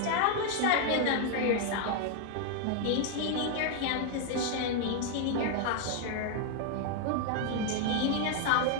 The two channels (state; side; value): different; both; correlation 0.00